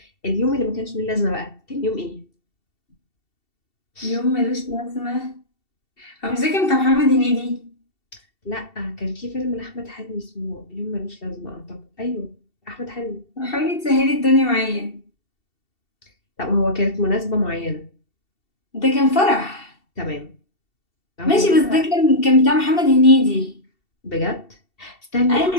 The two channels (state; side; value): late; right; 2.7 ms